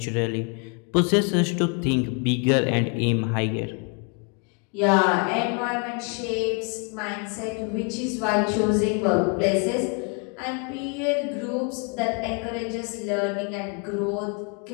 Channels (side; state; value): right; quieter; 35.6 dB